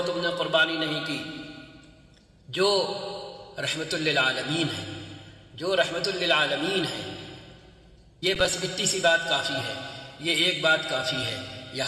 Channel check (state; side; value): identical; both; correlation 1.00